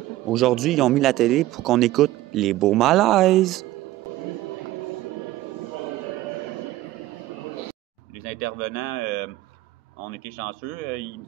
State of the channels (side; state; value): left; quieter; 16.0 dB